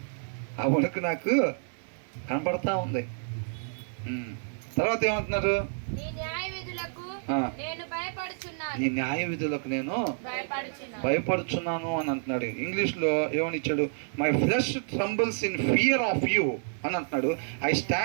ఆ వణుకు నాకు కనపడతా ఉంది. తర్వాత ఏమంటున్నారు? నీ న్యాయ విధులకు నేను భయపడుచున్నాను అని అంటున్నాడు. ఇంగ్లీష్లో ఏమని ఇచ్చాడు? My flesh trembles in fear of you అని అంటున్నాడు. I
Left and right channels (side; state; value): left; silent; digital silence